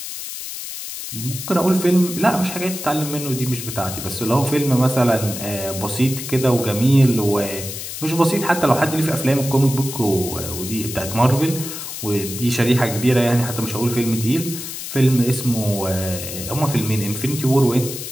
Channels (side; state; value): left; noise; hiss, 8 dB below the sound